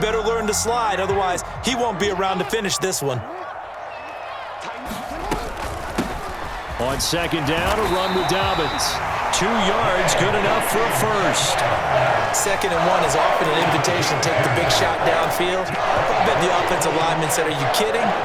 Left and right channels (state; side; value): identical; both; correlation 1.00